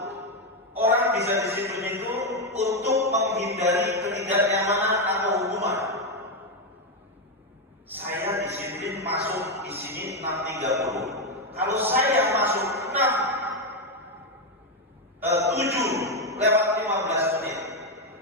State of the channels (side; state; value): both; normal; correlation 0.06